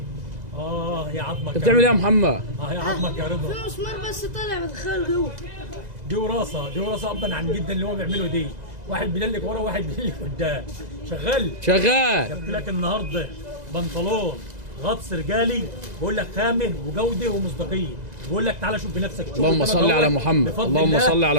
يا عظمك. انت بتعمل ايه يا محمد؟ يا عظمك يا رضا. في مسمار بس طالع بدخله جوه. دي وراثه ابا عن جدا اللي هو بيعمله دي. واحد بيدلك ورا وواحد بيدلك قدام. شغال. شغال. جبت لك النهارده بنطلون غطس رجالي، بقول لك خامه وجوده ومصداقيه، بقول لك تعالى شوف بنفسك. اللهم صل على محمد. اللهم صل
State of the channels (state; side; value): late; left; 2.0 ms